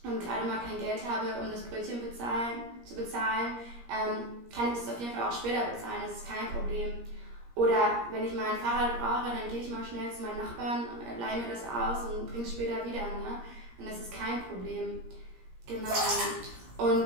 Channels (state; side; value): late; left; 17 ms